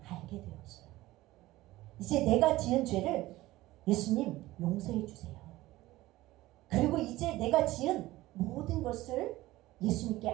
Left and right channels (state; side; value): quieter; left; 17.5 dB